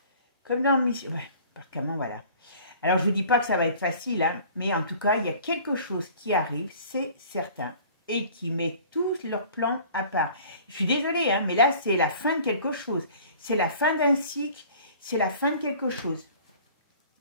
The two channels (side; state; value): both; inverted; correlation -0.48